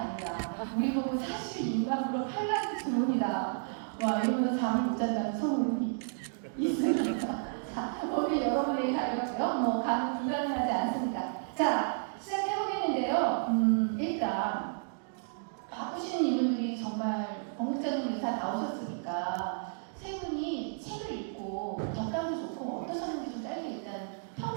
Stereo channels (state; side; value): silent; left; digital silence